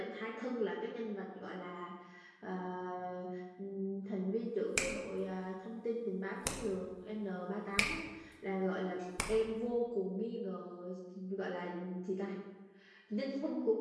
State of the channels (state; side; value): identical; both; correlation 1.00